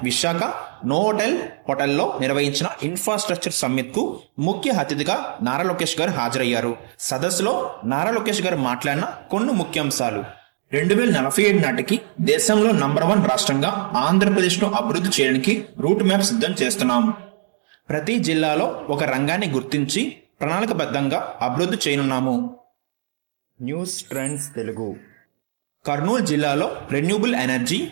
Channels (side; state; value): left; silent; digital silence